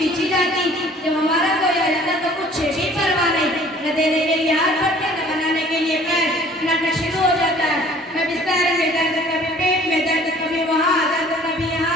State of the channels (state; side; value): normal; both; correlation 0.52